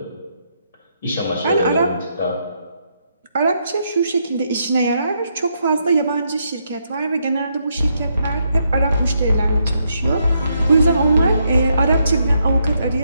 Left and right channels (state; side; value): inverted; both; correlation -0.77